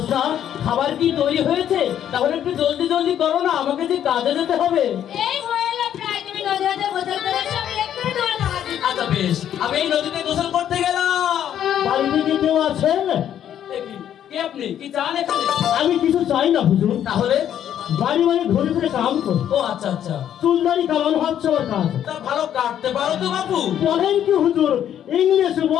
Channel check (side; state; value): right; quieter; 10.2 dB